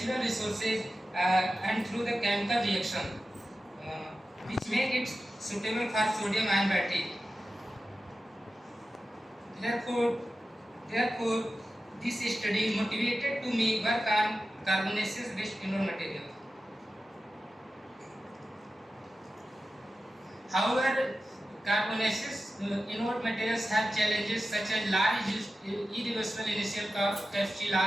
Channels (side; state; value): both; normal; correlation 0.93